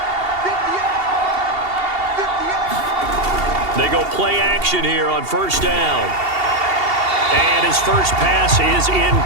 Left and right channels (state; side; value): late; left; 2.7 ms